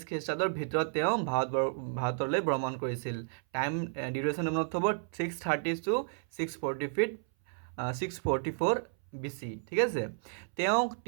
খ্ৰীষ্টাব্দৰ ভিতৰত তেওঁ ভাৰতলৈ ভ্ৰমণ কৰিছিল। টাইম ডিউৰেশ্যন মনত থ'ব 630 to 644 BC। ঠিক আছে, তেওঁক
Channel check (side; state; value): left; silent; 56 dB below the other